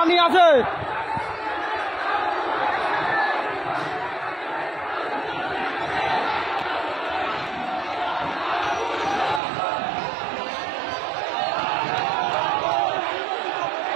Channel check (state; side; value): drops out; left; at 9.4 s